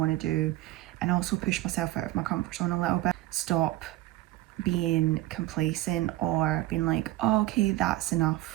to do, and also push myself out of my comfort zone a little bit. Stop being complacent or being like, oh, okay, that's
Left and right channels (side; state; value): left; quieter; 16.6 dB